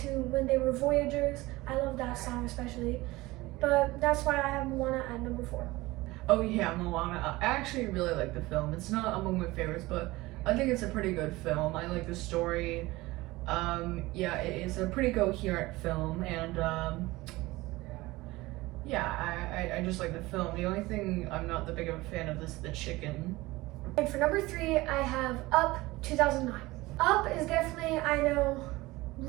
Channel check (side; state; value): left; quieter; 20.1 dB